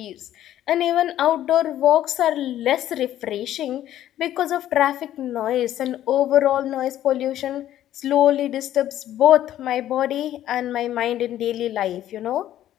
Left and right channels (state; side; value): quieter; right; 12.4 dB